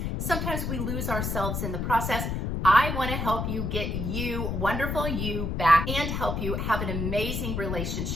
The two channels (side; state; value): left; noise; rumble, 2 dB below the sound